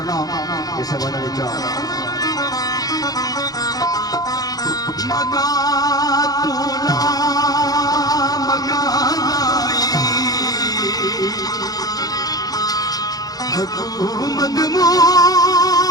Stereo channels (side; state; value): right; late; 0.18 ms